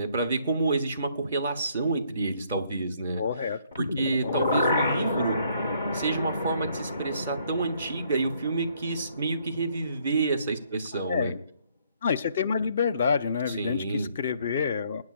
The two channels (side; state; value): both; inverted; correlation -0.67